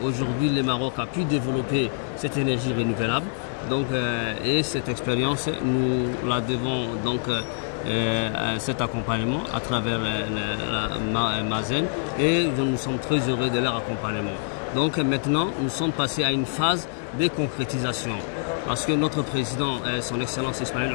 le Maroc a pu développer cette énergie renouvelable. Donc, et cette expérience, nous la devons donc cet accompagnement à travers la Mazen, et nous sommes très heureux de leur accompagnement. Donc maintenant, nous sommes passés à une phase de concrétisation. Parce que notre président, son Excellence Ismaël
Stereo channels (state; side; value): silent; right; 59 dB below the other